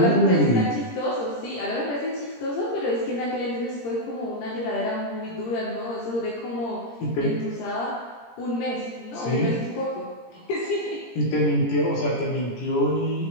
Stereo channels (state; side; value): late; right; 17 ms